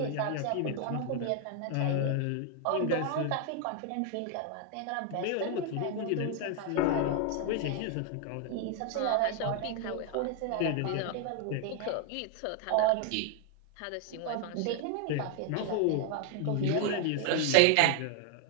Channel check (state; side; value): different; both; correlation 0.00